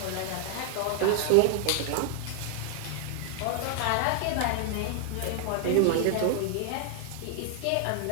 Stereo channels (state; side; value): different; both; correlation 0.00